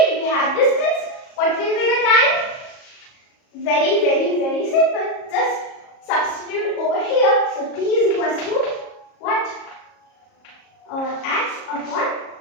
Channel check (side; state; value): right; late; 37 ms